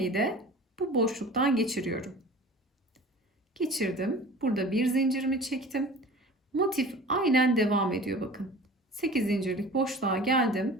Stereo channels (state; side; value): normal; both; correlation 0.41